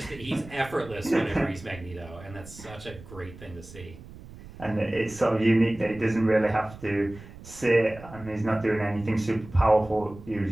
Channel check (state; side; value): noise; right; rumble, 17 dB below the sound